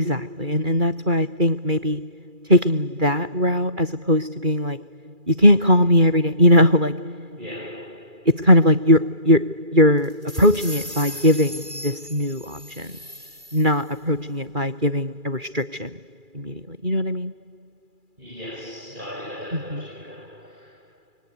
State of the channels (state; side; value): late; left; 2.4 ms